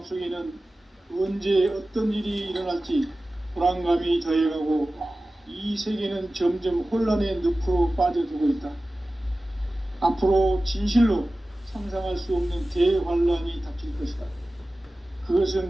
언제 어떤 일이 일어날지 불안감이 더해가고 이 세계는 점점 혼란의 늪으로 빠져들고 있다. 앞으로 진실로 상상할 수 없는 대환란이 닥칠 것이다.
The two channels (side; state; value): both; normal; correlation 0.96